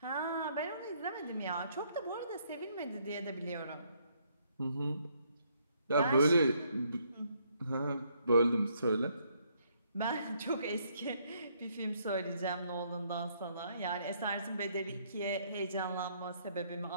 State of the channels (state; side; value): inverted; both; correlation -0.70